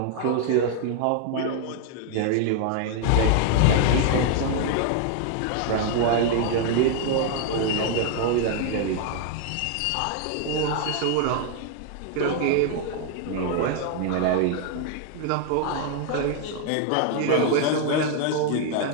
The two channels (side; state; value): both; different; correlation 0.00